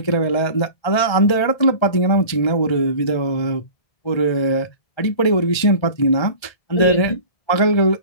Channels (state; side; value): late; right; 1.3 ms